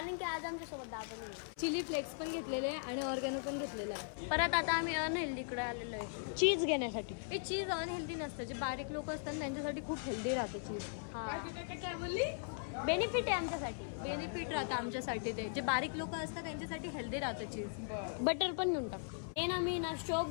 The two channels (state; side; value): silent; right; 52 dB below the other